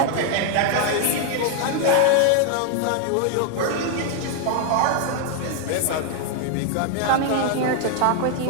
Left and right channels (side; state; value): both; different; correlation 0.00